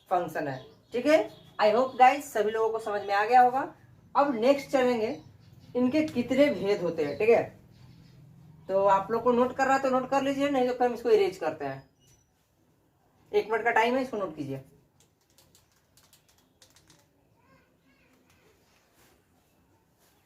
फंक्शन है. ठीक है. आई होप गाइस सभी लोगों को समझ में आ गया होगा. अब नेक्स्ट चलेंगे इनके कितने भेद होते हैं. ठीक है. तो आप लोग को नोट कर रहा है तो नोट कर लीजिए, नहीं तो फिर हम इसको इरेज करते हैं. 1 मिनट का टाइम है, इसको नोट कीजिए.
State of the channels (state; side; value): identical; both; correlation 1.00